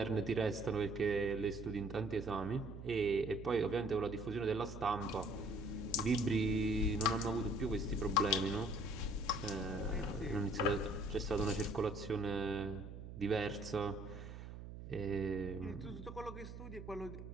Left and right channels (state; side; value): noise; right; hum, 11 dB below the sound